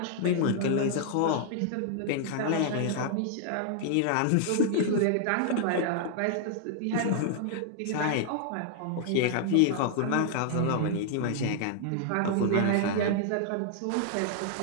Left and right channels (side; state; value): both; different; correlation -0.01